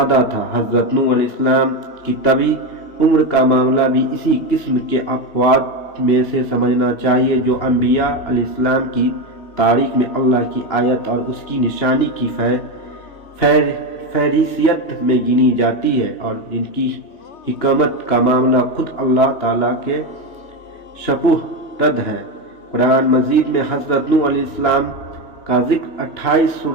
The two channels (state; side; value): late; right; 2.9 ms